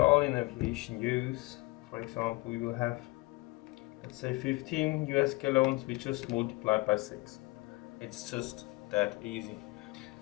in aviation use, for example, we will have, let's say 15 US gallons, we just multiply by 6. It's just that easy.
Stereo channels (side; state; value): right; quieter; 23.3 dB